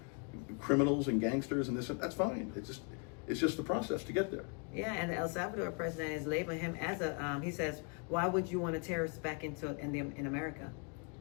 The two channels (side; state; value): right; quieter; 36.6 dB